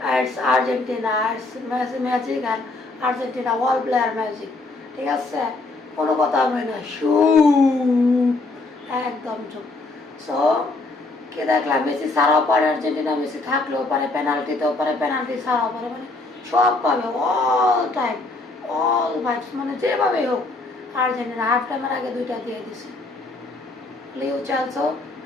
ইটস আর্জেন্টিনা ইটস ম্যাজিক আর আর্জেন্টিনা ওয়ার্ল্ড প্লেয়ার ম্যাজিক ঠিক আছে কোনো কথা হবে না শু একদম চুপ সো কে দেখলাম মেসি ছাড়াও পারে আর্জেন্টিনা মেসি থাকলেও পারে পেনাল্টিতেও পারে পেনাল্টি ছাড়াও পারে মানে সব পাবে অল টাইম অল ভাইবস মানে যেভাবে হোক আর্জেন্টিনা হাফ টাইমের আগে দুইটা দিয়ে দিছে লিও চালসো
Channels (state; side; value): quieter; right; 3.2 dB